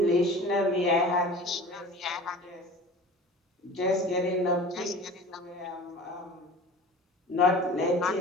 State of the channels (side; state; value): both; normal; correlation 0.40